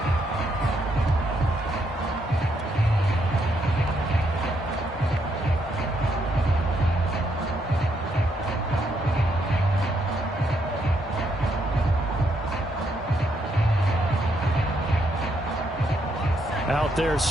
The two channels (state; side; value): normal; both; correlation 0.75